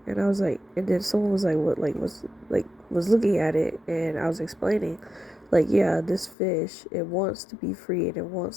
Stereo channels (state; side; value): drops out; right; at 6.4 s